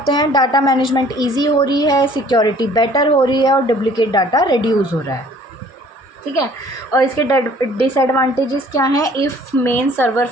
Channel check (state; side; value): normal; both; correlation 0.54